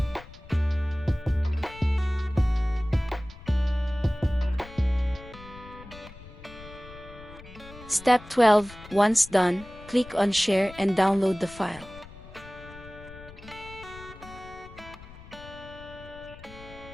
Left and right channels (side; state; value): left; noise; rumble, 18 dB below the sound